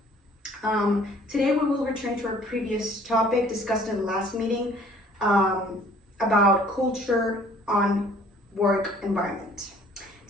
Today we will return to our previous topic discussed in the last meeting about culture on work environment.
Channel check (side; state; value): both; normal; correlation 0.55